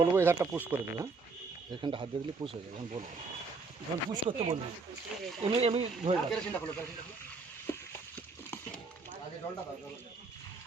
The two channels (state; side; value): quieter; left; 4.1 dB